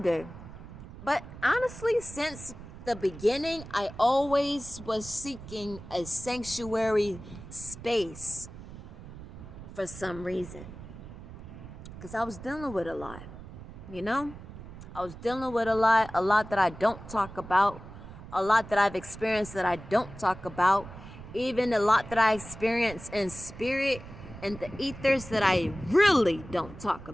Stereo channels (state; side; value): noise; right; rumble, 14 dB below the sound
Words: but honestly, since the beginning, I always was seeking a sanctuary space for some reason. Because I was dealing with a lot, you know? I was dealing with a lot that I don't talk about, a lot that I've experienced that I don't talk about, even a lot that I experience in spirit and the ethers that I really don't talk